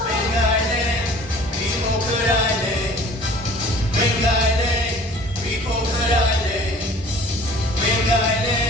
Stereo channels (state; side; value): normal; both; correlation 0.48